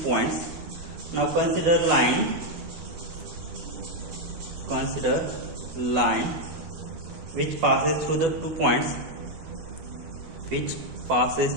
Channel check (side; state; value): left; late; 12 ms